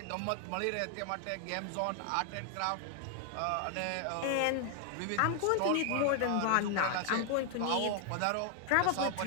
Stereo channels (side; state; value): both; different; correlation 0.00